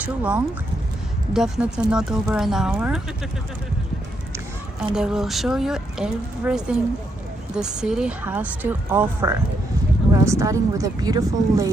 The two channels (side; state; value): both; normal; correlation 0.78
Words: long, definitely not over an hour, and I will show you everything the city has to offer. We are starting with a beautiful